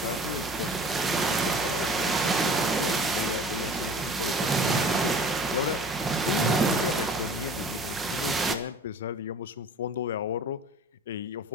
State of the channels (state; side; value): normal; both; correlation 0.45